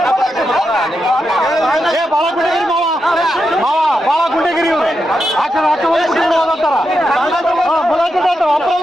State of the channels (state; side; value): normal; both; correlation 0.86